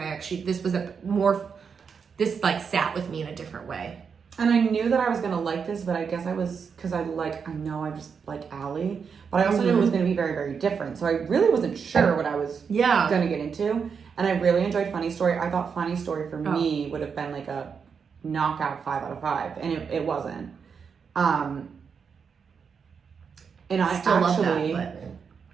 actually, this was this like sat with me in a different way. And I knew that I was gonna like this, but I guess I was, because I know I just like Ali, but I also knew it was gonna be very, very different. So I really wasn't sure what I was gonna get into. And I really enjoyed Funny Story. I thought Funny Story for me would have been like a knockout 5 out of 5, and it wasn't. And I still actually love that,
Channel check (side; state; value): left; quieter; 6.2 dB